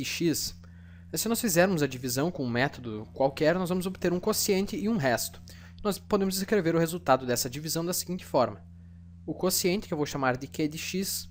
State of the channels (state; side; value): identical; both; correlation 1.00